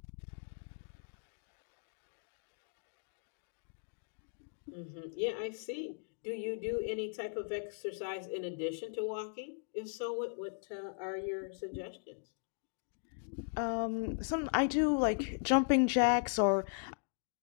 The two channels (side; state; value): right; silent; digital silence